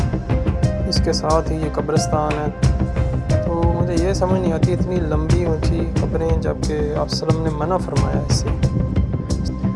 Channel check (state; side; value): identical; both; correlation 1.00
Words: इसके साथ ही ये कब्रिस्तान है। तो मुझे ये समझ नहीं आती इतनी लंबी ऊंची कब्रें, जबकि आप सल्लम ने मना फरमाया इससे।